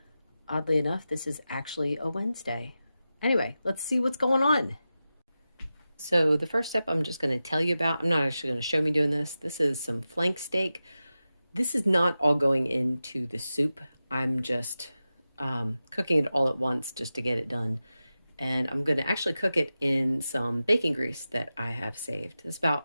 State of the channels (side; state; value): both; inverted; correlation -0.93